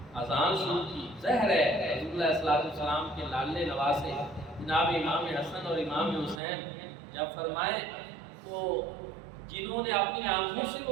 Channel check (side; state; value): left; drops out; at 6.4 s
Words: اذان شروع کی۔ ظاہر ہے حضور علیہ السلام کے لاڈلے نواسے جناب امام حسن اور امام حسین جب فرمائیں تو جنہوں نے اپنی آنکھوں سے